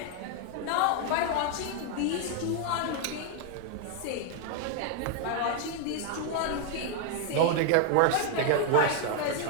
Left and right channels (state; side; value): different; both; correlation 0.00